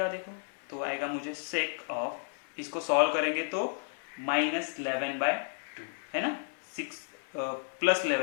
देखो, तो आएगा मुझे सेक ऑफ, इसको सॉल्व करेंगे तो -11/2 है ना, 6 प्लस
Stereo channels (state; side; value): silent; right; digital silence